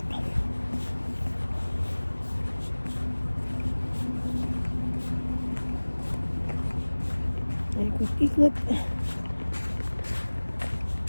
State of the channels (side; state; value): both; inverted; correlation -1.00